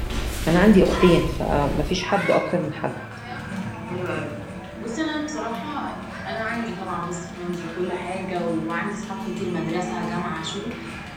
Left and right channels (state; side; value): identical; both; correlation 1.00